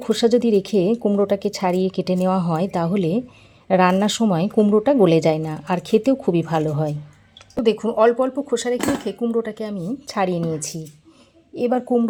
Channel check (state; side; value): identical; both; correlation 1.00